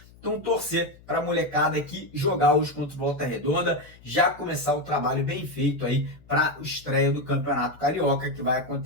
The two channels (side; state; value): left; noise; hum, 24 dB below the sound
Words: Então torcer para a molecada aqui jogar hoje contra o Volta Redonda, já começar o trabalho bem feito aí para a estreia do Campeonato Carioca, que vai